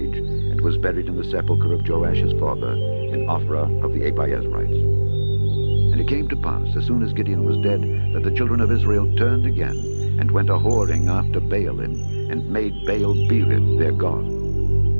and was buried in the sepulchre of Joash his father, in Ophrah of the Abiezrites. And it came to pass, as soon as Gideon was dead, that the children of Israel turned again, and went a-whoring after Baalim, and made Baal-berith their god.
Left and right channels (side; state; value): both; inverted; correlation -1.00